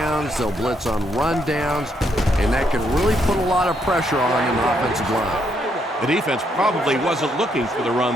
they'll blitz on run downs, and that can really put a lot of pressure on an offensive line. The defense probably wasn't looking for the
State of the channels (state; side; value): normal; both; correlation 0.75